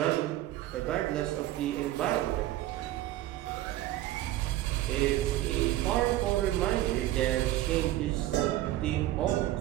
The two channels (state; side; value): quieter; left; 14.9 dB